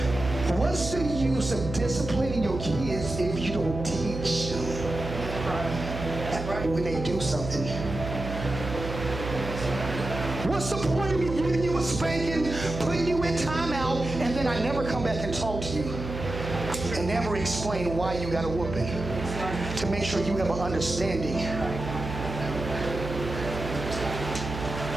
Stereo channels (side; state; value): right; noise; hum, 7 dB below the sound